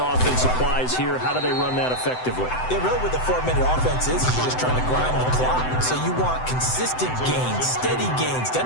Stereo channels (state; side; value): late; right; 7.9 ms